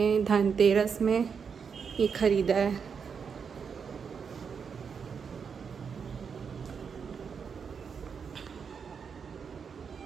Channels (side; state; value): left; quieter; 6.3 dB